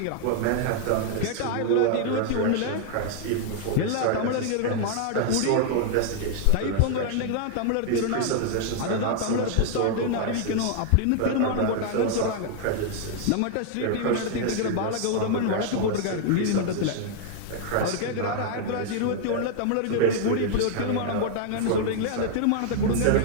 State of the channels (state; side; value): different; both; correlation 0.00